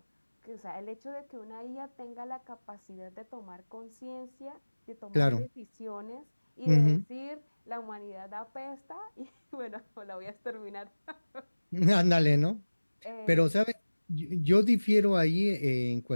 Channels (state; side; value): inverted; both; correlation -1.00